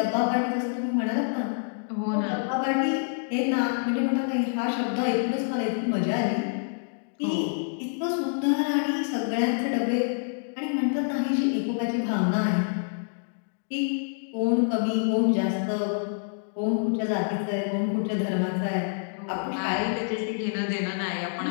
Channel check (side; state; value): right; silent; digital silence